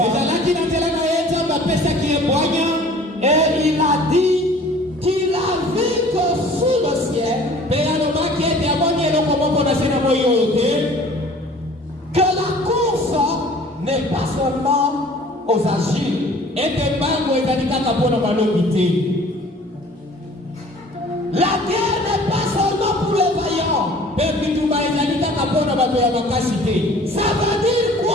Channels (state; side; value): normal; both; correlation 0.49